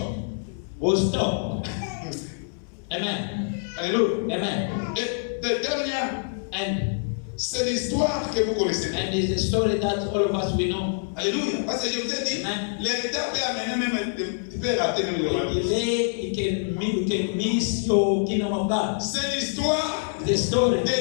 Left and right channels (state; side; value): silent; right; digital silence